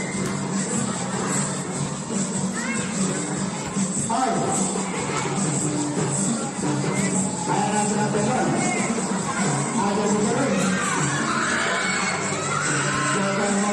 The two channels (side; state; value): both; identical; correlation 1.00